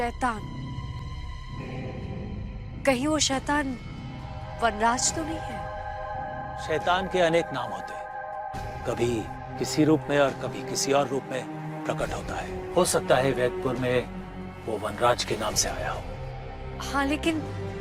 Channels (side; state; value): both; identical; correlation 1.00